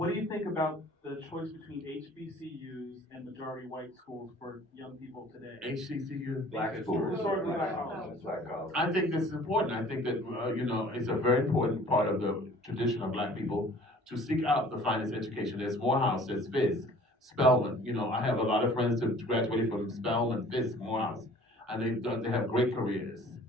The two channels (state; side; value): normal; both; correlation 0.51